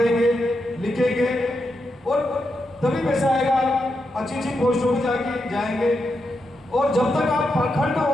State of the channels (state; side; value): normal; both; correlation 0.85